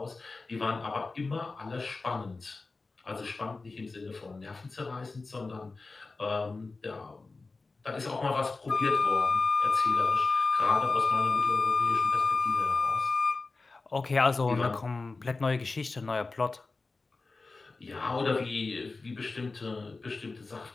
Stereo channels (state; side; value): quieter; right; 3.8 dB